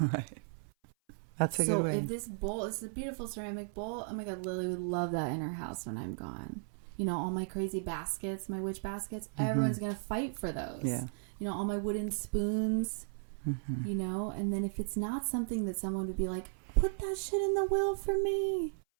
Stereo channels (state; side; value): silent; left; 54 dB below the other